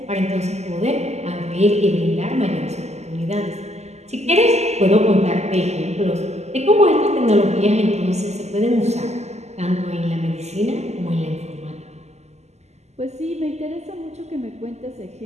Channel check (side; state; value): left; late; 0.32 ms